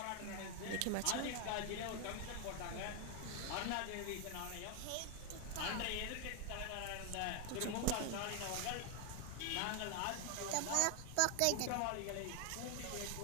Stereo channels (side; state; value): both; different; correlation 0.01